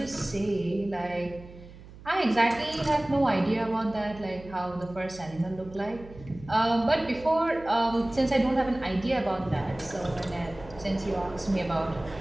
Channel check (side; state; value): right; noise; hum, 18 dB below the sound